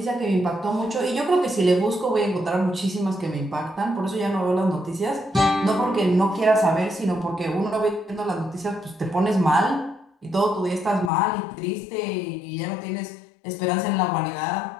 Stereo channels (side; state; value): right; drops out; at 11.1 s